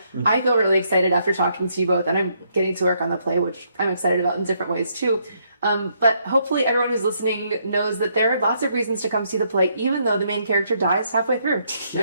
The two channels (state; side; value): inverted; both; correlation -0.73